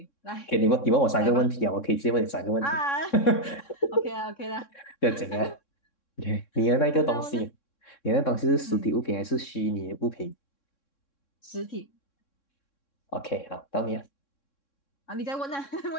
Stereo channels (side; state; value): right; late; 3.6 ms